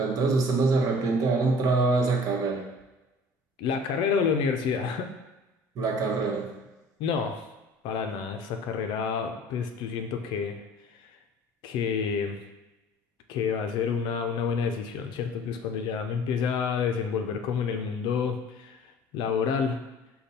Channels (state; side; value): normal; both; correlation 0.47